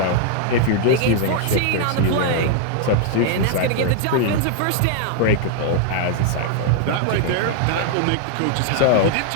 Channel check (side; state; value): both; different; correlation 0.00